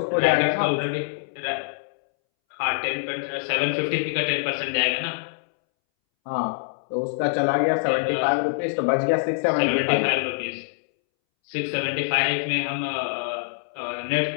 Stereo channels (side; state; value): right; silent; 62 dB below the other